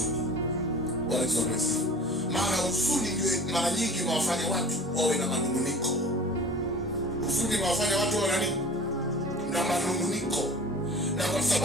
Maana huzuni ndio mara nyingi inawafanya watu wawe na manunguniko. Huzuni inawafanya watu wawe na nini? Na manunguniko. Na kwa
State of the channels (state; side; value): normal; both; correlation 0.42